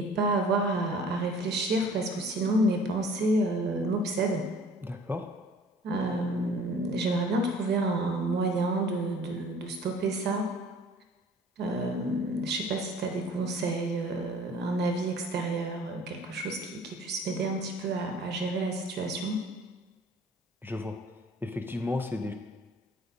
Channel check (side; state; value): both; normal; correlation 0.50